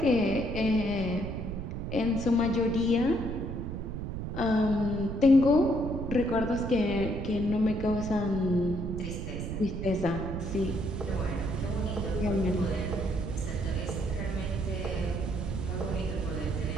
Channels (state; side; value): noise; right; rumble, 5 dB below the sound